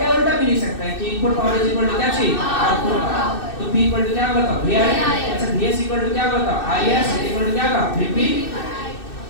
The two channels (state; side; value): late; right; 2.6 ms